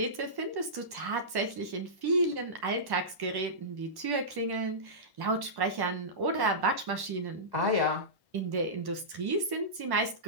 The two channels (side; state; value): left; late; 1.1 ms